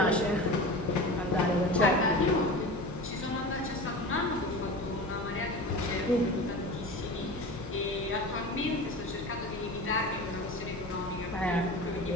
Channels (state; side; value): normal; both; correlation 0.32